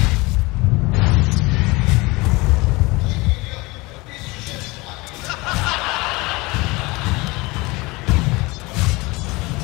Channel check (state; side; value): quieter; right; 23.6 dB